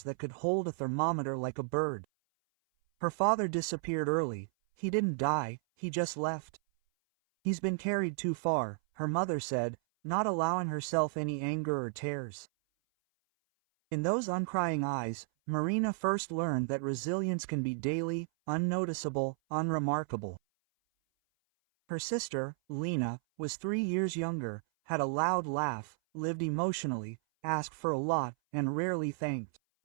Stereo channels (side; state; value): left; silent; 55 dB below the other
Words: that could hold a thermometer like a bird. Her father disappeared early. He didn't die, he just left. He's been carried too far, her mother said, not allowing herself any anger or tears. In those uncrying eyes, Marina first learned that resilience can be daily, unnoticeable, unremarkable. Her sister, Lena, was 3 years younger, had a loud laugh, lived emotionally, asked for a lot, and rarely thanked.